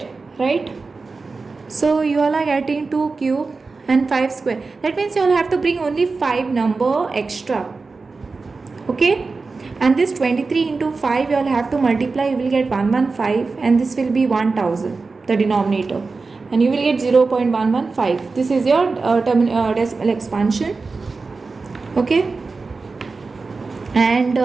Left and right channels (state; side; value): quieter; left; 4.1 dB